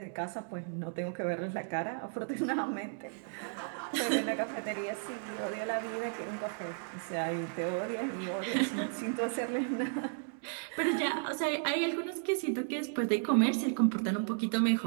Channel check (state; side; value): silent; left; digital silence